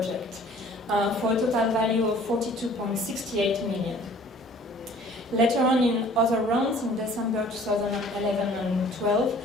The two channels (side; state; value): both; normal; correlation 0.52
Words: for a total value of 42.68 million. Later on in other rounds, in December 2011 and 12,